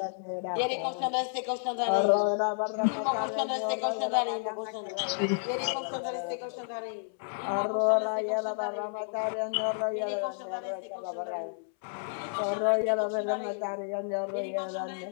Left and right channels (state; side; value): silent; right; 57 dB below the other